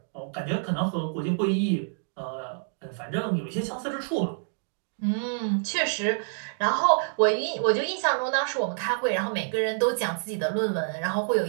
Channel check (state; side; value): silent; left; digital silence